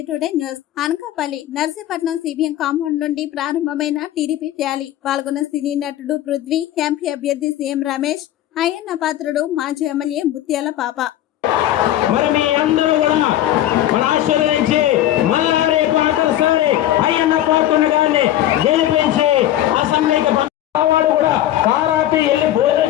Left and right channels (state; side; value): quieter; right; 12.9 dB